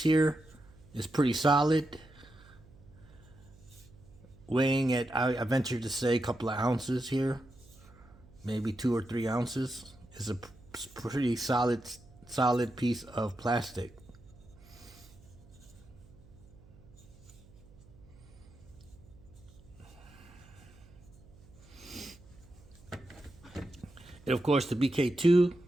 here. It's pretty solid, weighing at, I venture to say, a couple of ounces here, maybe 2 or 3 ounces. It's a pretty solid piece of plastic. And of course the BK2.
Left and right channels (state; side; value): noise; right; hum, 24 dB below the sound